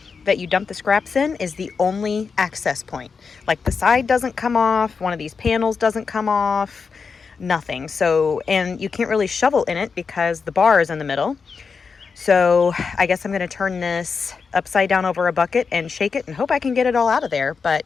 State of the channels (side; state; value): right; quieter; 5.3 dB